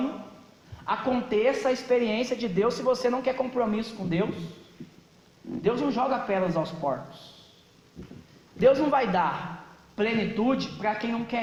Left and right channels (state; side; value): identical; both; correlation 1.00